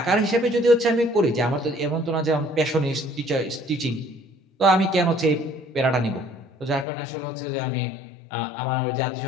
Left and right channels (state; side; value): drops out; right; at 6.9 s